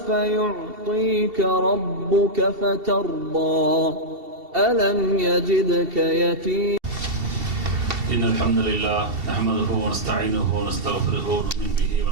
يعطيك ربك فترضى ألم يجدك يتيما إن الحمد لله نحمده ونستعينه ونستغفره ونؤمن به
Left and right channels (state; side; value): late; left; 2.7 ms